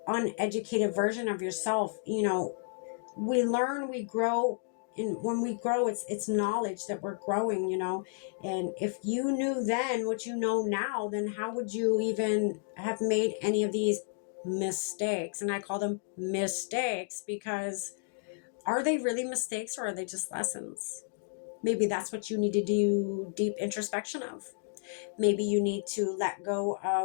uneducated version of yourself. We learn, we grow. And when we grow, it's knowledge that we're growing, and if you knew then what you know now, then how would you even have made any of these mistakes? And I call them mistakes because are they really mistakes, or are they just lessons? Maybe that's what you need to do deep introspection of. Maybe you need to let go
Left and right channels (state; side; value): silent; right; digital silence